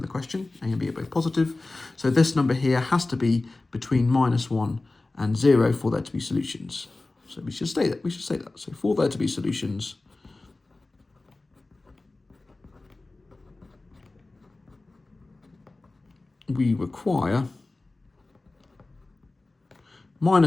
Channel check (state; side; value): quieter; right; 3.2 dB